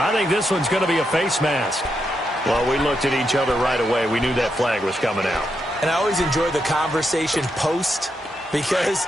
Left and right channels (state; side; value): normal; both; correlation 0.83